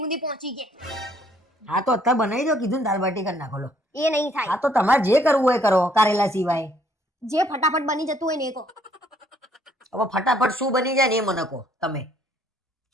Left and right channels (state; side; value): normal; both; correlation 0.65